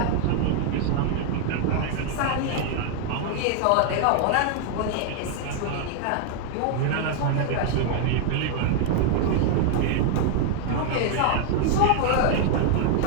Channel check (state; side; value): different; both; correlation 0.00